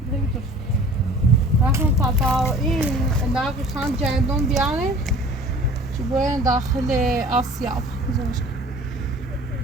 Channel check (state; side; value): normal; both; correlation 0.47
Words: رفتم تا این انداز خان جندون بیارم چه باید داخل آسیا